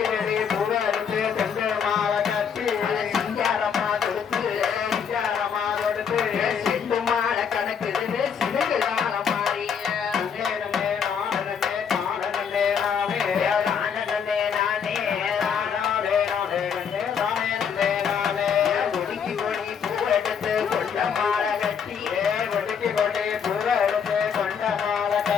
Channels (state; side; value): quieter; right; 7.2 dB